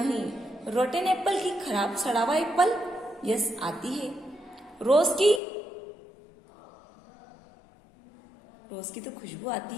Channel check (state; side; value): drops out; right; at 5.4 s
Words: रोटेन एप्पल की, खराब सड़ा हुआ एप्पल? यस, आती है. रोज की? रोज की तो खुशबू आती